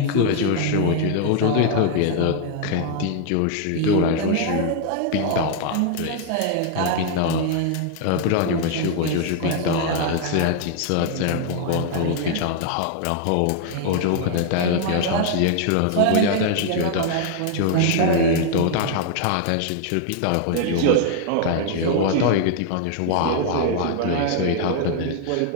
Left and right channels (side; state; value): both; different; correlation 0.00